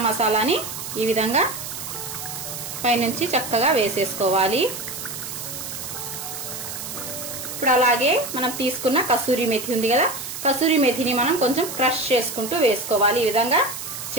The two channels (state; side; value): noise; right; hiss, 8 dB below the sound